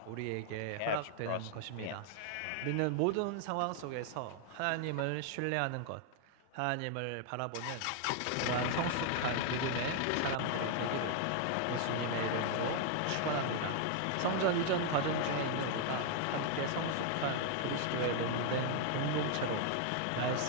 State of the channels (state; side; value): different; both; correlation 0.00